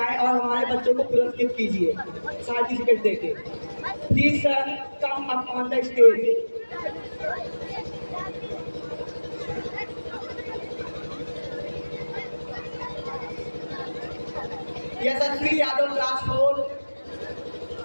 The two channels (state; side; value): inverted; both; correlation -1.00